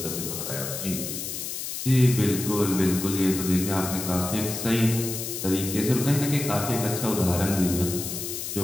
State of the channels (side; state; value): left; noise; hiss, 5 dB below the sound